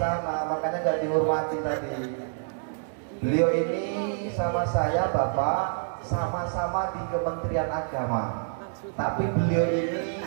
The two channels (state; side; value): silent; left; 60 dB below the other